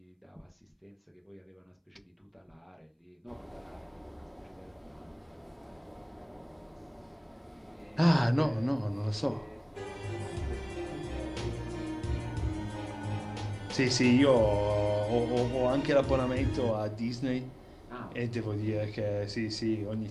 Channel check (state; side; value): identical; both; correlation 1.00